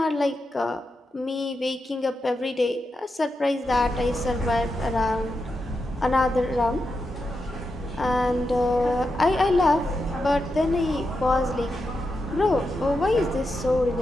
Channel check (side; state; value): both; normal; correlation 0.87